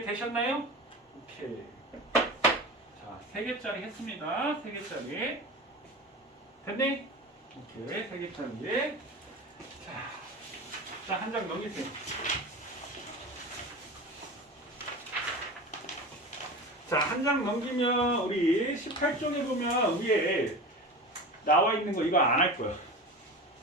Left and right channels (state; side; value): normal; both; correlation 0.30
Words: 오케이. 자, 3개짜리 했습니다. 3개짜리. 됐니? 오케이, 3개짜리. 자, 한 장 넘기세요. 자, 한 장 넘기면 우리 18쪽에 보면 위에 나와 있는 거 이거 안 할 거야.